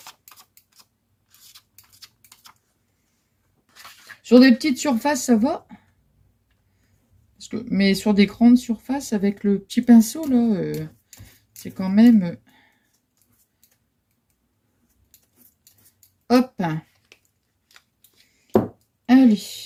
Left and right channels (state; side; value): identical; both; correlation 1.00